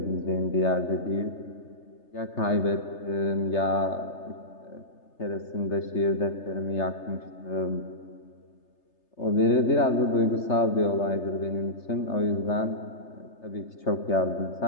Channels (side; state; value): right; late; 3.3 ms